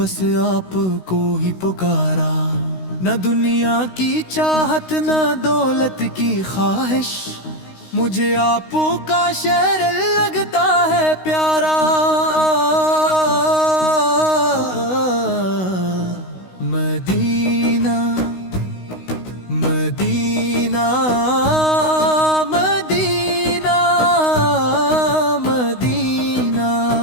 آپ کو ہی پکارا، نہ دنیا کی چاہت نہ دولت کی خواہش، مجھے آپ کا شہر لگتا ہے پیارا۔ مدینہ مدینہ مدینہ مدینہ،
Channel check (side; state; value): right; late; 16 ms